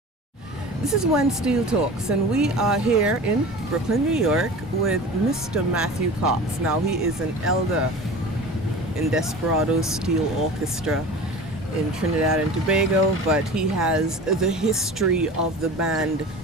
This is When Steel Talks, and we are here in Brooklyn, New York with Mr. Matthew Cox. Now, he is an elder in Desperadoes Steel Orchestra in Trinidad and Tobago, but he has the history of the band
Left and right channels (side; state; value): both; normal; correlation 0.36